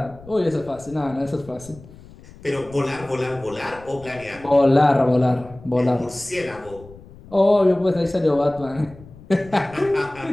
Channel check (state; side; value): noise; left; rumble, 21 dB below the sound